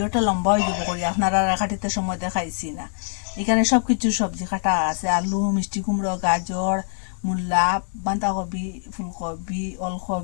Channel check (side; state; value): right; silent; 62 dB below the other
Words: লম্বা হয়ে যাব করি, আপনারা কাটিতে সময় দেখাইছি না। এখানে সব কিছু সবজি কাটা আছে, আলু, মিষ্টি কুমড়ো, গাজর, মূলা, বাঁধাকপি, ফুলকপি,